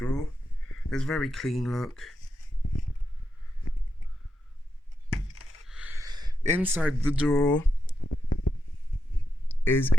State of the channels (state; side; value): normal; both; correlation 0.86